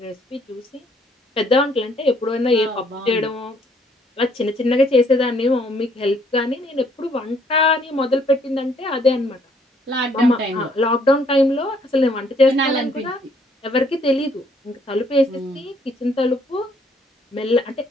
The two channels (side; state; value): both; normal; correlation 0.65